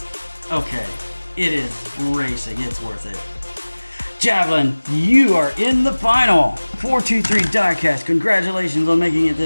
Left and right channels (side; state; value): both; inverted; correlation -1.00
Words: Okay, it is racing. It's worth it. Javelin, you are in the final. 423 Diecast, congratulations on making it